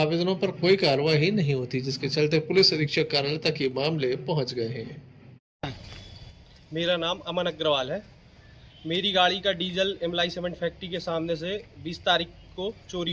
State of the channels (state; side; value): identical; both; correlation 1.00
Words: पर कोई कार्रवाई नहीं होती, जिसके चलते पुलिस अधीक्षक कार्यालय तक ये मामले पहुंच गए हैं। मेरा नाम अमन अग्रवाल है। मेरी गाड़ी का डीजल इमलाई सीमेंट फैक्ट्री के सामने से 20 तारीख को